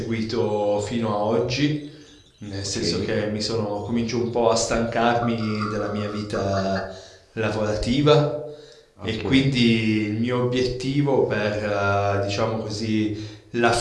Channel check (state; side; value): identical; both; correlation 1.00